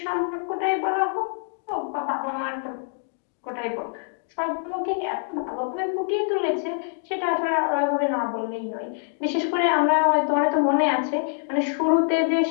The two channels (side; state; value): right; silent; digital silence